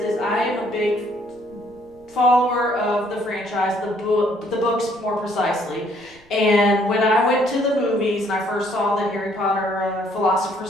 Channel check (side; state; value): right; noise; rumble, 29 dB below the sound